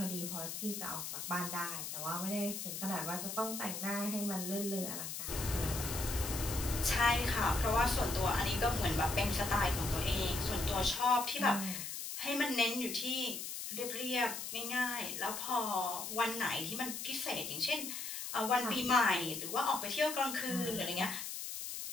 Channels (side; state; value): left; noise; hiss, 6 dB below the sound